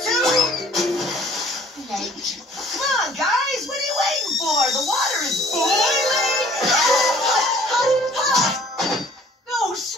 too late. Come on, guys. What are you waiting for? The water is boiling. No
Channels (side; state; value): both; normal; correlation 0.54